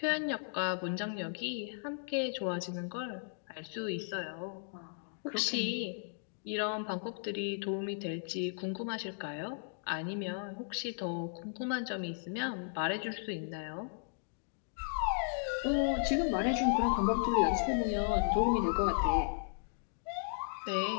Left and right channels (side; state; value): right; silent; digital silence